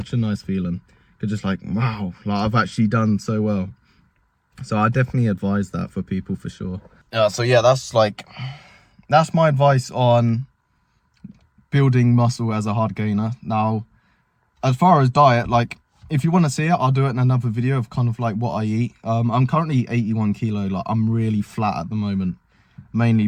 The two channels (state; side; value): identical; both; correlation 1.00